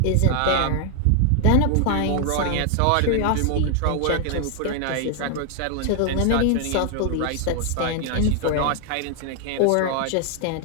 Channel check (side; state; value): both; different; correlation 0.00